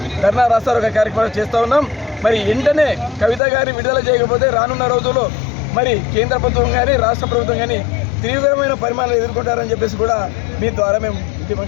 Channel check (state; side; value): drops out; right; at 3.4 s